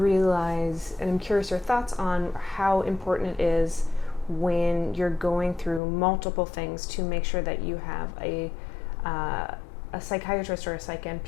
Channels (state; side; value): drops out; right; at 5.8 s